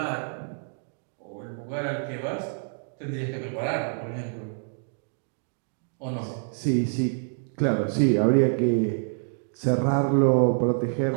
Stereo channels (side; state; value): left; silent; digital silence